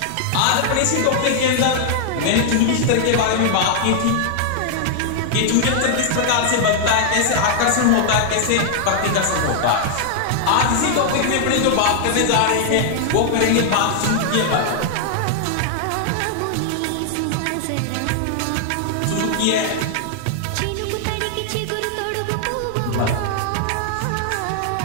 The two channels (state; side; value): different; both; correlation 0.00